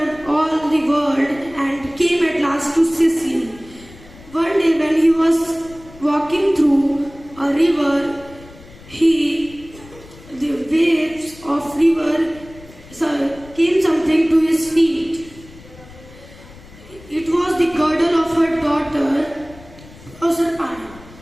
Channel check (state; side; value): noise; left; rumble, 21 dB below the sound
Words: all the world and came at last to Sicily. One day when he was walking through a river, the waves of river came something to his feet. It was the girdle of her daughter Proserpine.